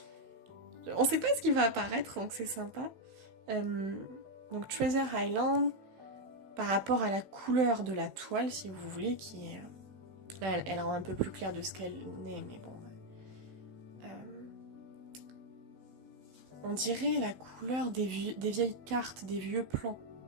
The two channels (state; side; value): late; left; 16 ms